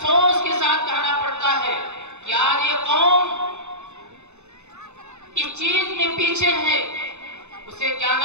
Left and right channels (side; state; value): left; late; 0.82 ms